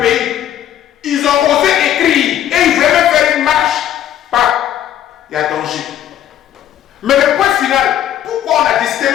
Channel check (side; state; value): right; quieter; 11.2 dB